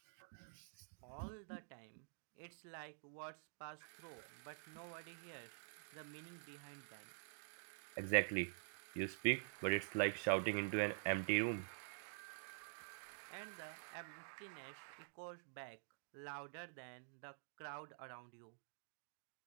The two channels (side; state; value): left; silent; digital silence